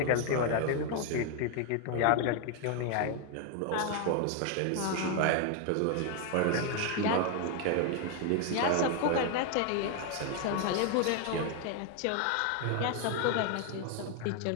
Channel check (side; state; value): both; different; correlation 0.01